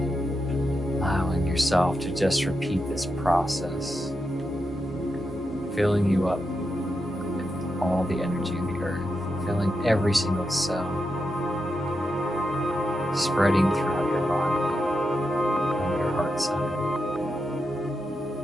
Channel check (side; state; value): both; normal; correlation 0.86